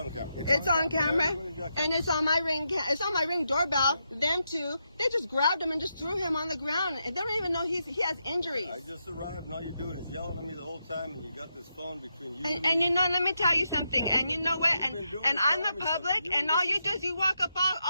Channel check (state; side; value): inverted; both; correlation -0.84